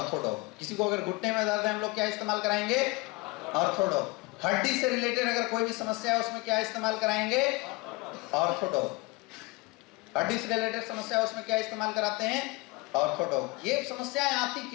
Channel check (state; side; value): quieter; right; 24.2 dB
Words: किसी को अगर घुटने में दर्द है, हम लोग क्या इस्तेमाल कराएंगे? ऑर्थोडॉग। हड्डी से रिलेटेड अगर कोई भी समस्या है, उसमें क्या इस्तेमाल कराएंगे? ऑर्थोडॉग। हड्डी से रिलेटेड समस्या है, उसमें क्या इस्तेमाल कराते हैं? ऑर्थोडॉग। ये समस्याएं आती